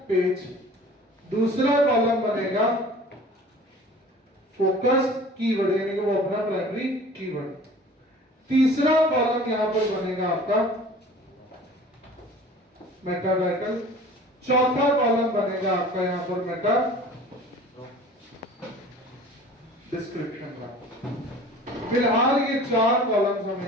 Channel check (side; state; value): both; normal; correlation 0.45